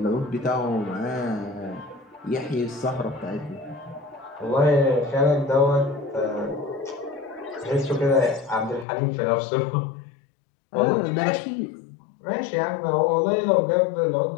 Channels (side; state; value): right; drops out; at 8.8 s